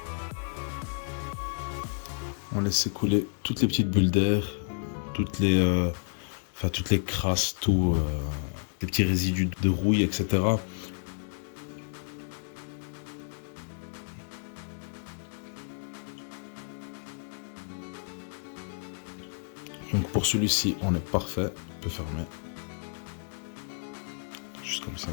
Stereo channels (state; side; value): silent; right; digital silence